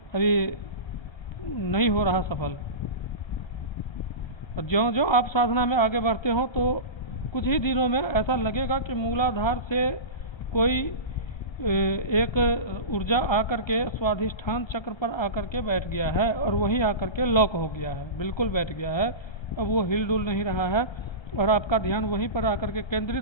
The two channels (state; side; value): late; right; 1.3 ms